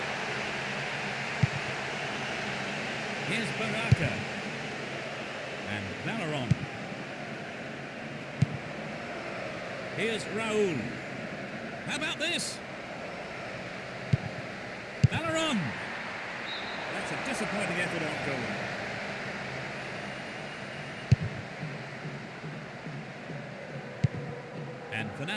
Here's Baraka. And Valeron. Here's Raul. How about this? Valeron. That's a disappointing effort on goal. And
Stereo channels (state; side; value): identical; both; correlation 1.00